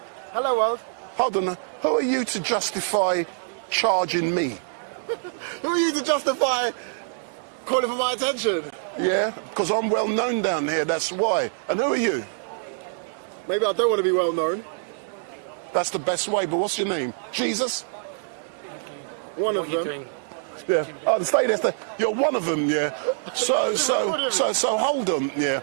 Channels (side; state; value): left; silent; digital silence